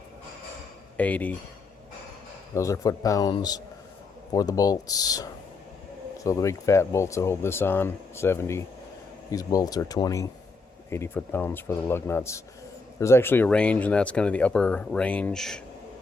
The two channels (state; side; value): quieter; right; 3.9 dB